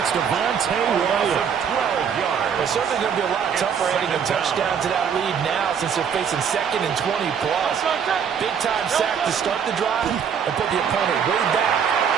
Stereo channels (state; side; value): quieter; left; 7.4 dB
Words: Devontae Williams. 12 yards. It's certainly going to be a lot tougher adding a touchdown to that lead now since they're facing 2nd and 20+. Big-time sack to start the drive and put the opponent way back.